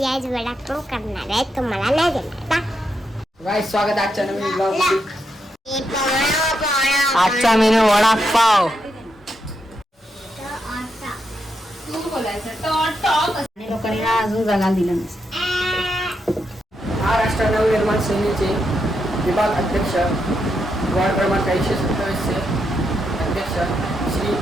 आज वडापाव करणार आहे, तुम्हाला नाही देणार. गाइस स्वागत आहे आजच्या नवीन ब्लॉग मध्ये. आजचा मेनू वडापाव. लोकांनी अजून जागा दिला महाराष्ट्र नवनिर्माण सेनेचे विभाग अध्यक्ष वार्ड क्रमांक 127 अध्यक्ष श्री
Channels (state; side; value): normal; both; correlation 0.82